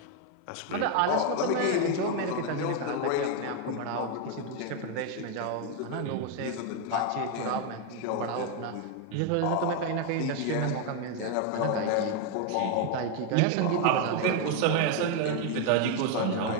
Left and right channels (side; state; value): both; different; correlation 0.01